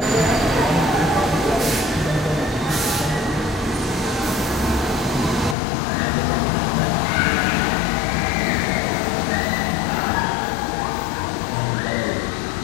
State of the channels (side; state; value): right; drops out; at 5.6 s